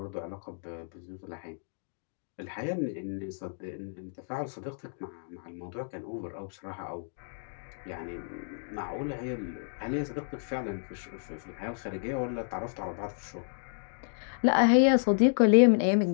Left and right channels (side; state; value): right; silent; digital silence